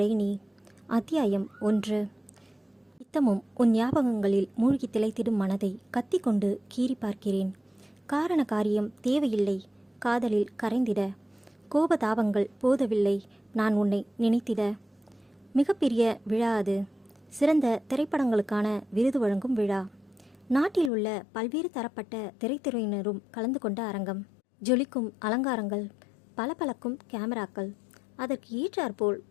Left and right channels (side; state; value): right; drops out; at 20.9 s